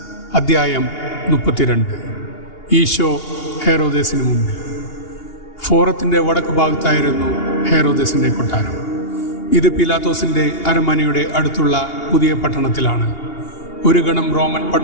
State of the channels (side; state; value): right; late; 2.8 ms